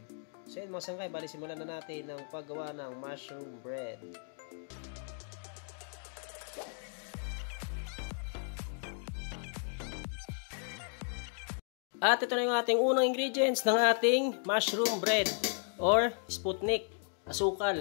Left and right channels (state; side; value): silent; right; 55 dB below the other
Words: So yun mga sangkay, bali simulan na natin ang paggawa ng mushroom bread. At ito na yung ating unang ingredients ng ating mushroom bread or sputnik,